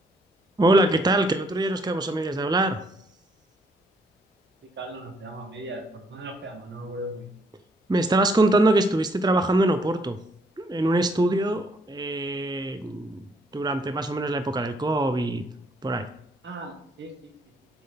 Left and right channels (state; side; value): normal; both; correlation 0.69